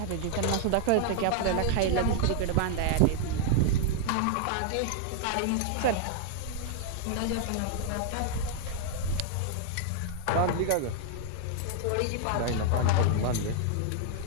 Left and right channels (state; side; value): different; both; correlation -0.01